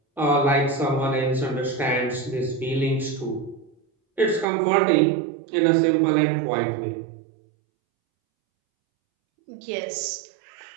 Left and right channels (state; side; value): drops out; left; at 4.5 s